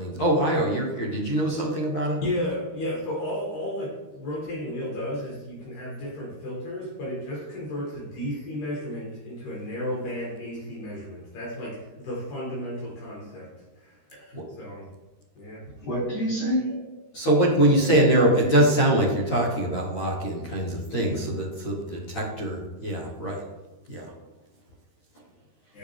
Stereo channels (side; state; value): right; late; 13 ms